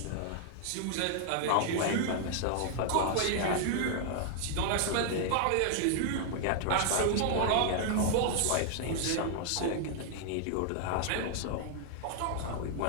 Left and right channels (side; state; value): both; different; correlation 0.00